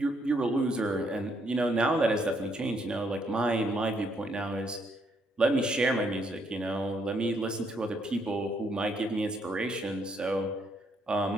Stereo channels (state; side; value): normal; both; correlation 0.72